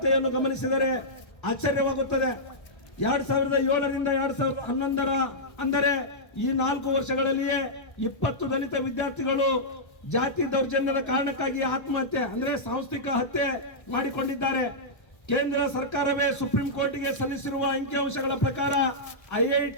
ಗಮನಿಸಿದರೆ ಆಶ್ಚರ್ಯವಾಗುತ್ತದೆ. 2007ರಿಂದ 2011 ಅಂದರೆ ಈ 4 ವರ್ಷಗಳಲ್ಲಿಯೇ 20 ದಲಿತ ವಿದ್ಯಾರ್ಥಿಗಳು ಜಾತಿ ದೌರ್ಜನ್ಯದ ಕಾರಣಕ್ಕಾಗಿ ಆತ್ಮಹತ್ಯೆ ಅಂದ್ರೆ ಸಾಂಸ್ಥಿಕ ಹತ್ಯೆ ಮಾಡಿಕೊಂಡಿದ್ದಾರೆ. ಕೇಂದ್ರ ಸರ್ಕಾರವೇ ಸುಪ್ರೀಂ ಕೋರ್ಟ್ಗೆ ಸಲ್ಲಿಸಿರುವ ಅಂಕಿಅಂಶಗಳ ಪ್ರಕಾರ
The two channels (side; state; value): right; late; 1.3 ms